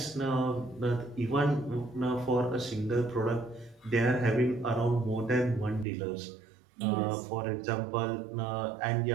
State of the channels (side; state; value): left; drops out; at 5.9 s